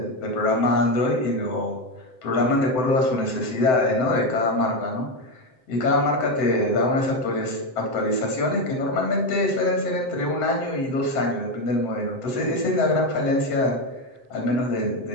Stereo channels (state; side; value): late; right; 7.8 ms